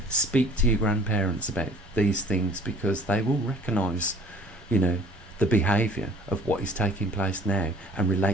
Speak to your grandparents about these things, because they will recognise, you know, the behaviour of what is taking place now and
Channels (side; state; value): both; normal; correlation 0.51